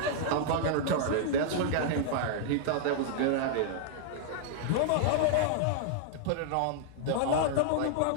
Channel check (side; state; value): both; different; correlation -0.01